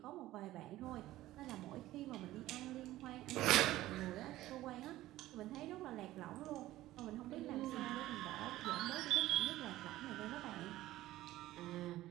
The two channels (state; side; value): quieter; left; 15.8 dB